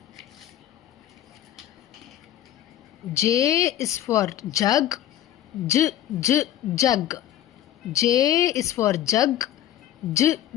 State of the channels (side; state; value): right; quieter; 11.9 dB